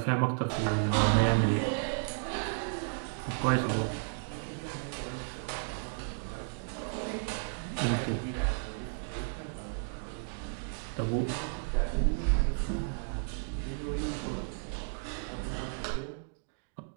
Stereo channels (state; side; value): silent; left; digital silence